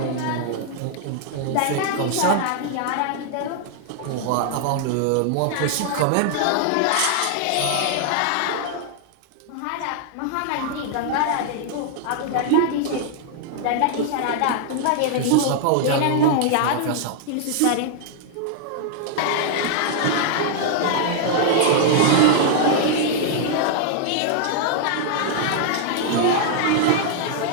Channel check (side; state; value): both; different; correlation 0.00